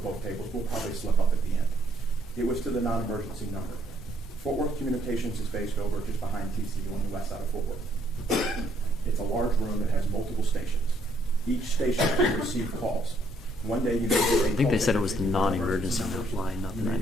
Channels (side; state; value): both; normal; correlation 0.69